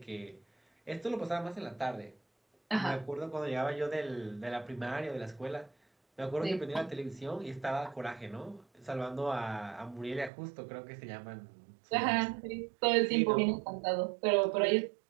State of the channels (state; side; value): drops out; left; at 10.3 s